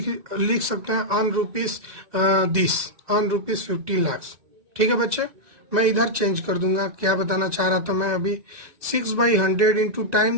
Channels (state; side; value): late; left; 1.9 ms